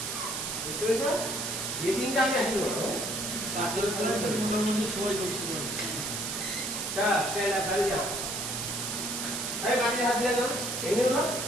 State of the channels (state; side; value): noise; right; hiss, 3 dB below the sound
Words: বুঝতে পেরেছ যে দিনটা আমি আসি বলো তারপরে সবাই করছি গাড়ি যাও আরে গাড়ি হাত দিয়ে যাও এমনি না